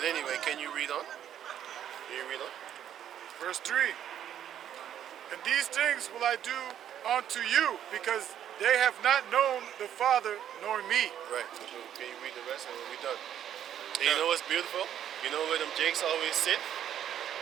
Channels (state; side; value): quieter; left; 10.3 dB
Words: anyway, can you read on? Can you read on? Verse 3. And these things will I do unto you, because they have not known the Father nor me. Right. So can you read the rest and we'll be done? And you know what's beautiful? You know where them Jakes always sit?